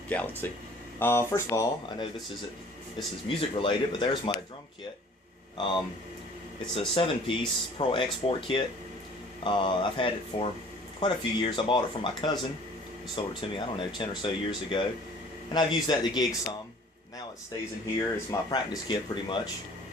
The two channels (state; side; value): normal; both; correlation 0.51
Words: Galaxy. First of all, I know this is music related, but there's my drum kit. It's a 7-piece Pro Export kit. I've had it for quite a few years. I bought it from my cousin. He sold it to me, I don't know, 10 or so years ago. And I've used that to gig some. Now it stays in here. It's my practice kit pretty much.